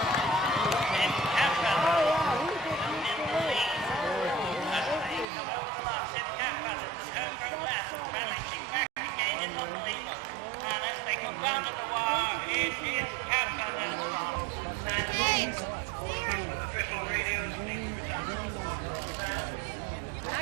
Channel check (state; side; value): drops out; left; at 5.2 s